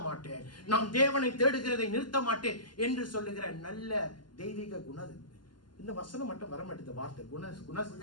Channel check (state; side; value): late; right; 0.71 ms